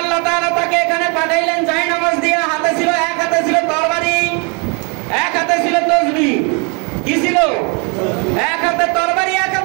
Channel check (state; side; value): quieter; left; 33.6 dB